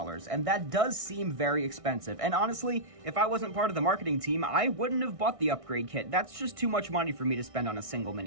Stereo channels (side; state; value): left; late; 1.6 ms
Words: and that does seem very expensive. And honestly, if I wasn't part of the marketing team, I wouldn't have bought the upgrade kit. That's just too much money for me to spend on a single